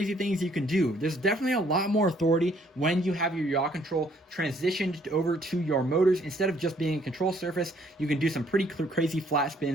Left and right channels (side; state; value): both; normal; correlation 0.64